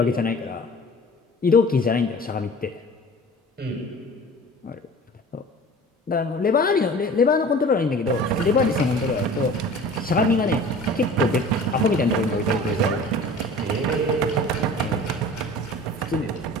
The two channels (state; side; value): normal; both; correlation 0.42